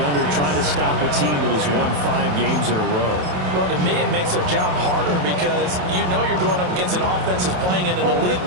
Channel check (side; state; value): left; late; 28 ms